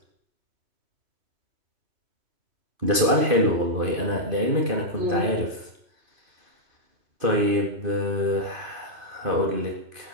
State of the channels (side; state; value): left; late; 2.5 ms